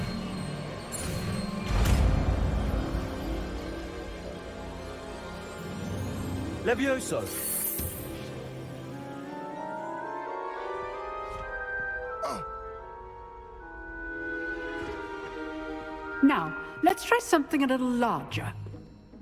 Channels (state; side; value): identical; both; correlation 1.00